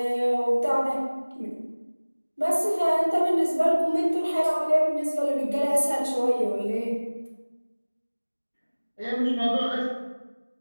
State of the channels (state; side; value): inverted; both; correlation -1.00